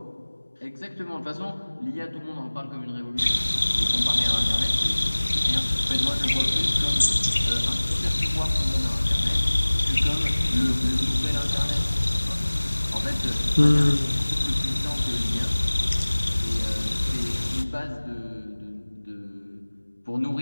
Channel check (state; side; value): inverted; both; correlation -1.00